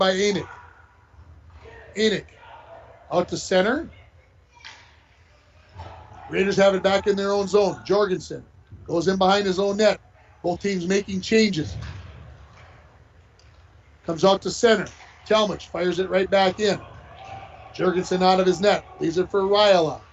Enoch. Enoch. Out to center. Raiders have it back in their own zone. Jorgensen goes in behind his own net. Both teams making changes. Comes out to center. Talmadge fires it right back in. Jorgensen out of his net. Leaves it for Ryla.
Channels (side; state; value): both; identical; correlation 1.00